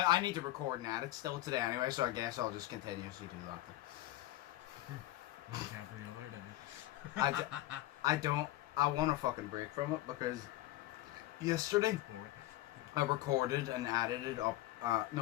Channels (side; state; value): right; quieter; 15.9 dB